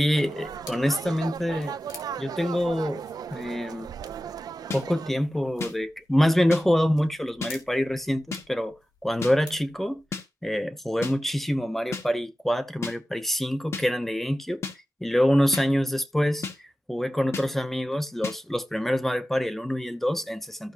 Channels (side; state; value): both; normal; correlation 0.94